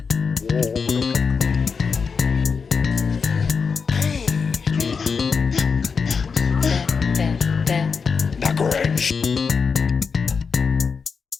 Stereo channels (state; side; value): quieter; right; 5.5 dB